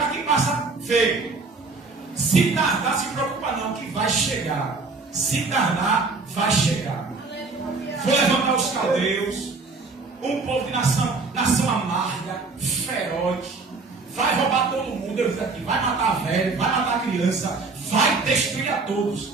quem passa feio. Se tardar, se preocupa não, que vai chegar. Se tardar, vai chegar. Vou levantar os caldeus, um povo de nação amarga, feroz, vai roubar todo mundo. Eu disse aqui: vai matar velho, vai matar criança, vai destruir a todos.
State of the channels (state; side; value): quieter; left; 4.0 dB